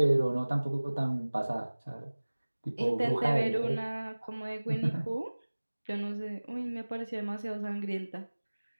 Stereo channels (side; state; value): both; inverted; correlation -1.00